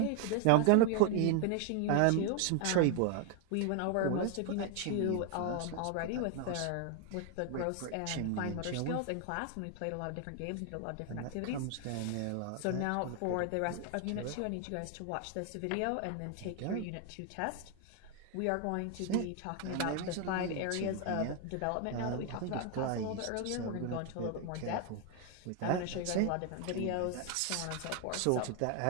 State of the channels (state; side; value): different; both; correlation 0.00